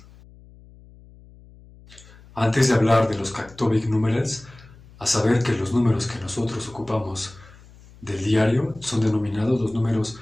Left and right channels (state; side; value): noise; left; hum, 23 dB below the sound